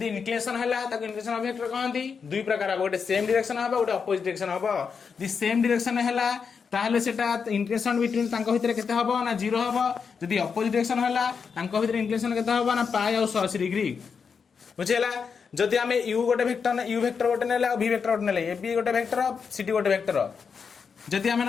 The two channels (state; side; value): quieter; right; 5.9 dB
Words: इंक्लिनेशन हैला ताको इंक्लिनेशन ऑफ वेक्टर कहंती दुई प्रकार गोटे सेम डायरेक्शन हबो गोटे अपोजिट डायरेक्शन हबो दि सेम डायरेक्शन हैला ताहले सेटा इंक्लिनेशन बिटवीन तांको भितरे केते हबो ना 0 हबो जदि अपोजिट डायरेक्शन हैला तांको भितरे इंक्लिनेशन केते हबो ना पाई और 180 डिग्री बुझिला जदि हमें u गोटे वेक्टर u वेक्टर गोटे नेले और v वेक्टर गोटे नेले ab गोटे वेक्टर cd गोटे वेक्टर जदि हमें